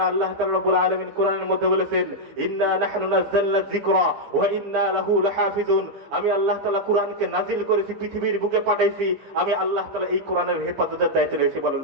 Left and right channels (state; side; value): late; left; 15 ms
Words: আল্লাহ তাআলা রব্বুল আলামিন কোরআনের মধ্যে বলেছেন, ইন্না নাহনু নাযালনা যিকরা ওয়া ইন্না লাহু লাহাফিজুন। আমি আল্লাহ তাআলা কোরআনকে নাজিল করেছি, পৃথিবীর বুকে পাঠাইছি, আমি আল্লাহ তাআলা এই কোরআনের হেফাজতের দায়িত্ব রয়েছে। বলেন